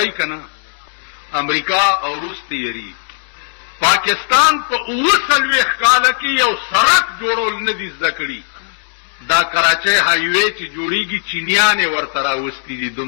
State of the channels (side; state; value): right; silent; digital silence